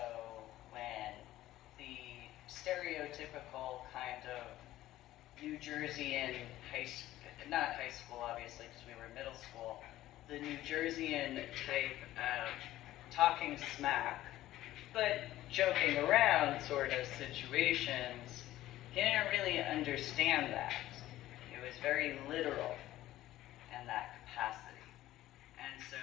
when the stereotypical kind of New Jerseyan not high school obviously because we were middle school, the New Jerseyan type of talking smack, but joking around sort of situations, he didn't really understand that. It was very literal in that capacity. And so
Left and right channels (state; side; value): quieter; right; 14.8 dB